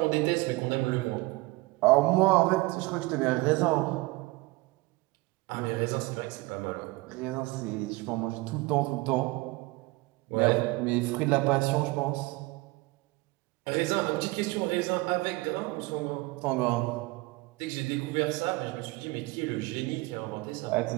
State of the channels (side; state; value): left; quieter; 22.7 dB